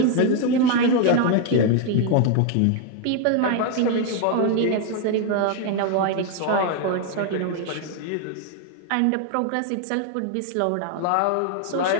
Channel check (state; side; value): different; both; correlation 0.00